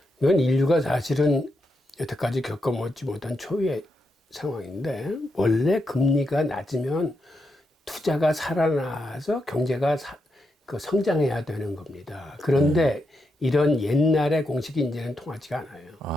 이건 인류가 사실은 여태까지 겪어보지 못한 초유의 상황인데, 원래 금리가 낮으면 투자가 살아나서 경제가 성장해야 되는 겁니다. 그런데 이런 옛날의 공식이 이제는 통하지가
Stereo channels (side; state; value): both; normal; correlation 0.83